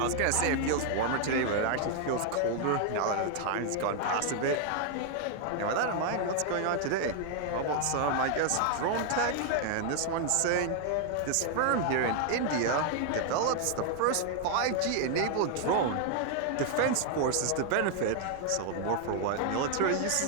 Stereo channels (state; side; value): different; both; correlation 0.00